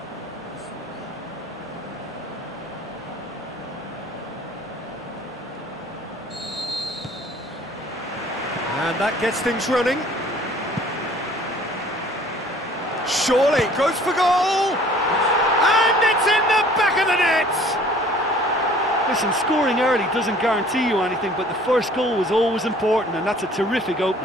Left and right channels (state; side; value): normal; both; correlation 0.53